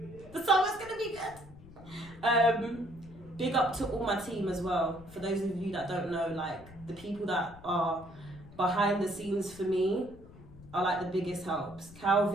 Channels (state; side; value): noise; left; rumble, 19 dB below the sound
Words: The summer's gonna be good. Big up to all my team as well. For those of you that don't know, like the people that are behind the scenes for me are like the biggest helps.